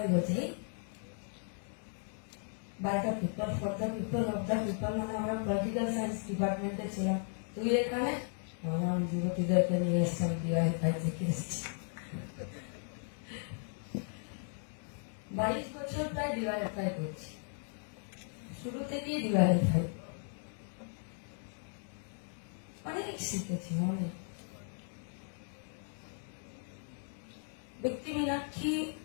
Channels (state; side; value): silent; right; 54 dB below the other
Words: বলছে by the people for the people of the people মানে আমরা পলিটিক্যাল সায়েন্স ডিপার্টমেন্টে ছিলাম তুই এখানে আমি যুবতীদেরকে নিয়ে এসেছি ডিভাইড ফাই থেকে এসেছি 22 বছর প্রায় ডিওয়াইএফআই করছি শুরু থেকেই ডিওয়াইএফআই অনেক শিখেছি অনেক ব্যক্তি মীনাক্ষী